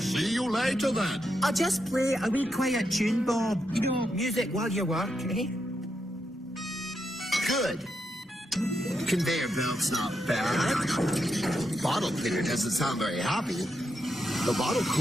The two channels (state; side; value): normal; both; correlation 0.83